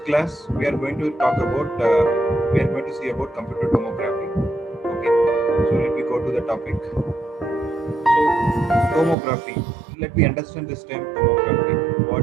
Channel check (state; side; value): drops out; left; at 9.2 s